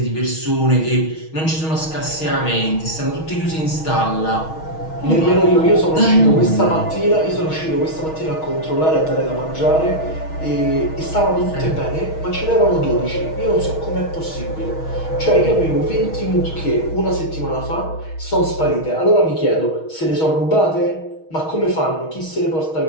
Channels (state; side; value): late; right; 6.3 ms